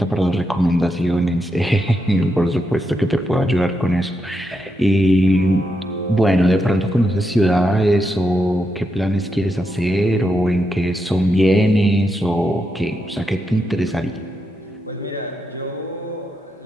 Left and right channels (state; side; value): normal; both; correlation 0.83